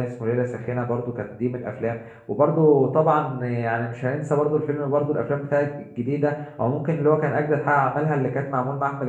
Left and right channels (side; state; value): both; identical; correlation 1.00